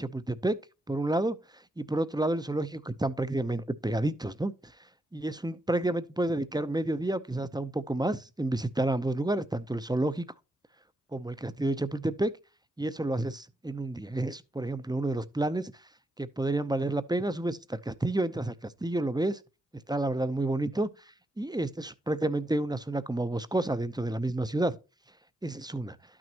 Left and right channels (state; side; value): normal; both; correlation 0.82